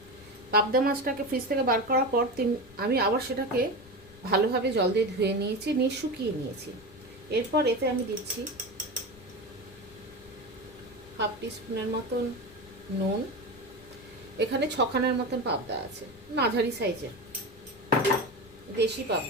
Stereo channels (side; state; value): left; noise; rumble, 23 dB below the sound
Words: পাবদা মাছটাকে ফ্রিজ থেকে বার করার পর আমি আবার সেটাকে ভালোভাবে জল দিয়ে ধুয়ে নিয়েছি, নিয়ে শুকিয়ে নিয়েছি। এরপর এতে আমি দিচ্ছি হাফ টিস্পুনের মতন নুন। এখানে 6খানার মতন পাবদা আছে, মাঝারি সাইজের দেশি